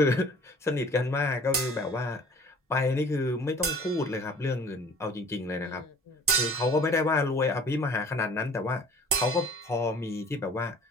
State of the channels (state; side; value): normal; both; correlation 0.49